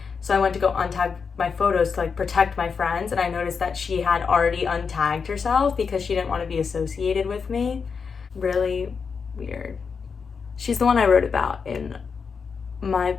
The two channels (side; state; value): right; quieter; 5.7 dB